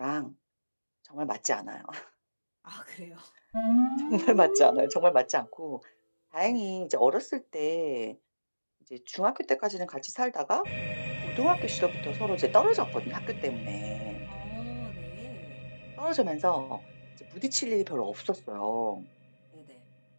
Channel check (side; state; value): both; inverted; correlation -1.00